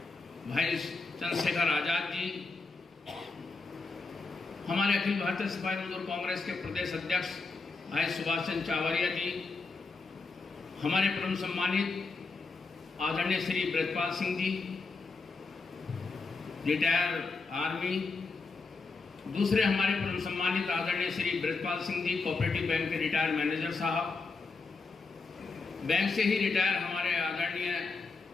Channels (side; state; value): right; quieter; 4.2 dB